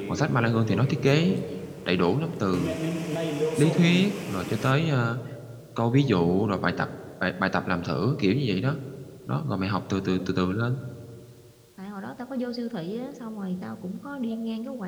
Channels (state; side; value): identical; both; correlation 1.00